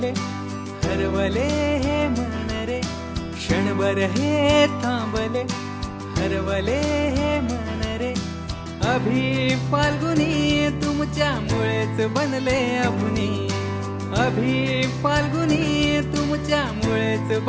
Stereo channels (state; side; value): identical; both; correlation 1.00